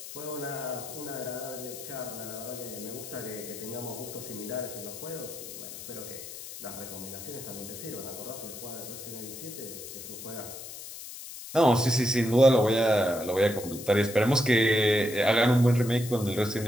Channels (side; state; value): left; noise; hiss, 11 dB below the sound